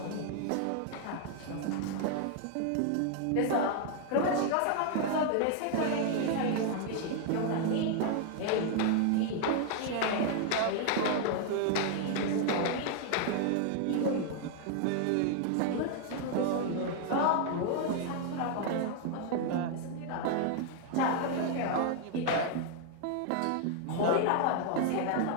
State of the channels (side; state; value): both; different; correlation 0.00